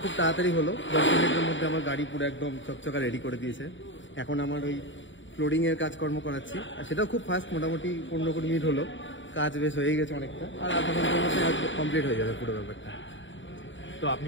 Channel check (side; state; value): right; late; 0.55 ms